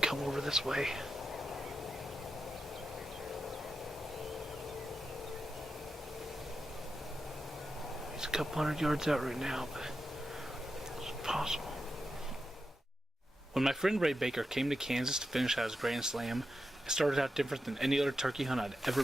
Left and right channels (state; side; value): normal; both; correlation 0.89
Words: come over this way. He's a couple hundred yards out right now, but it's possible. When my friend Ray Baker came to Kansas to finish out his Grand Slam, it started out different than any other turkey hunt I'd ever